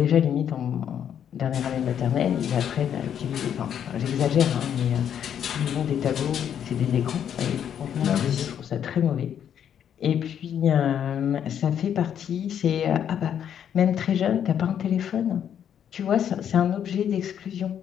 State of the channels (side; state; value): right; quieter; 9.1 dB